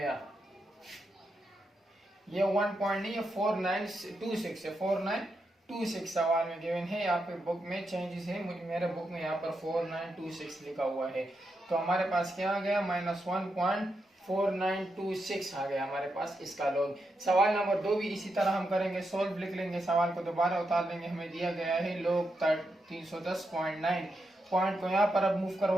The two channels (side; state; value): both; normal; correlation 0.85